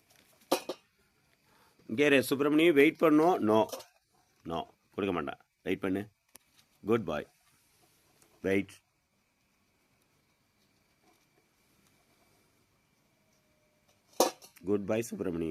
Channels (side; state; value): both; identical; correlation 1.00